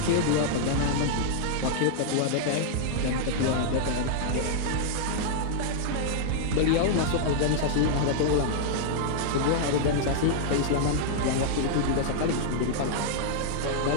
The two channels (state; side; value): different; both; correlation 0.00